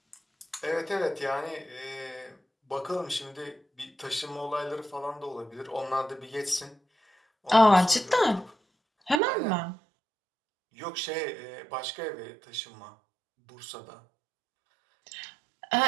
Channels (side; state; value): left; drops out; at 9.2 s